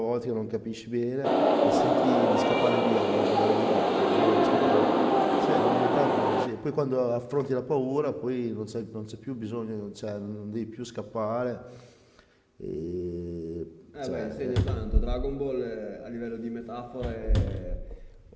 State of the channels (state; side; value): identical; both; correlation 1.00